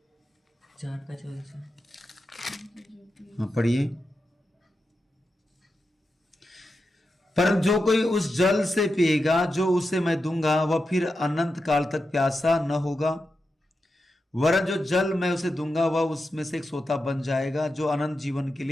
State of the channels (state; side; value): normal; both; correlation 0.89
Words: हाँ पढ़िए। पर जो कोई उस जल से पिएगा जो उसे मैं दूंगा, वह फिर अनंत काल तक प्यासा न होगा। वरन जो जल मैं उसे दूंगा वह उसमें से एक सोता बन जाएगा जो अनंत जीवन के